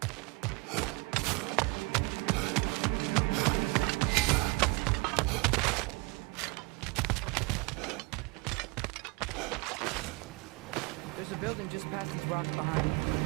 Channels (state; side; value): quieter; left; 25.9 dB